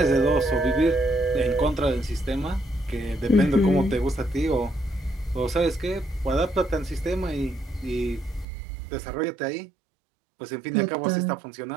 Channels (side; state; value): left; drops out; at 8.5 s